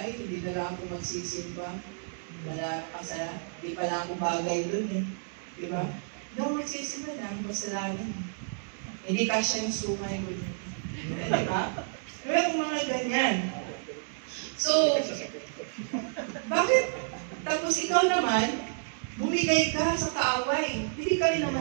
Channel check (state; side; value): silent; left; digital silence